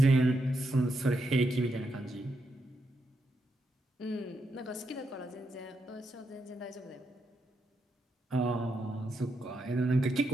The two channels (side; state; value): both; normal; correlation 0.82